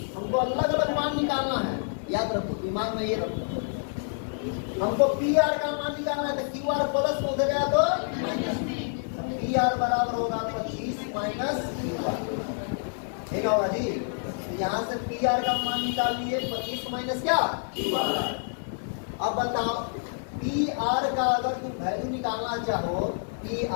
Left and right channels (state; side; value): silent; right; digital silence